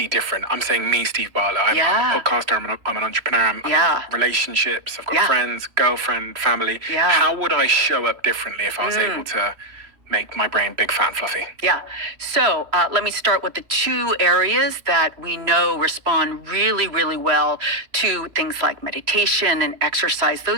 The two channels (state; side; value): late; left; 3.1 ms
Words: different? I'm saying me, Steve Bartlett. I'm a podcaster. I'm an entrepreneur. I'm in relationships. I've got friends, girlfriend, family. Yeah. How would I show up differently if I was able to make my brain big, fat, and fluffy? Yeah. So let me start with the two areas that we know respond really, really well to things like meditation and exercise.